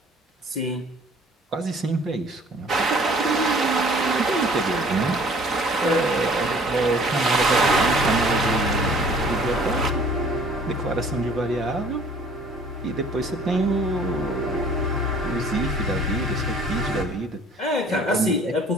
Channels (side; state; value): both; normal; correlation 0.53